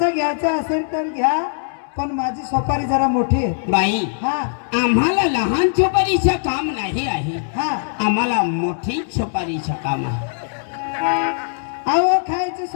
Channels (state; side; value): silent; right; 66 dB below the other